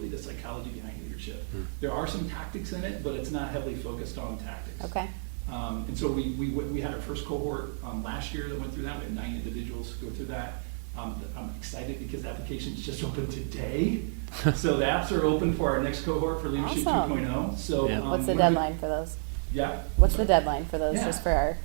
the psychology behind leadership. There are some tactics in it, but it's not heavily focused on tactics. Okay. And so we had our first cohort last year that went through that. We had 9 individuals go through that. I'm excited because the applications just opened today. So the apps are open for our next cohort for Leadership Awesome. 2.0. So Yeah. What's the deadline for those? Yeah. What's the deadline for those, Yeah. just for our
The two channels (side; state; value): left; silent; digital silence